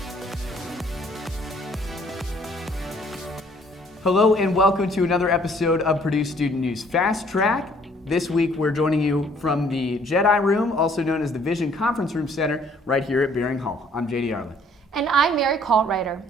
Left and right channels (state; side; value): normal; both; correlation 0.61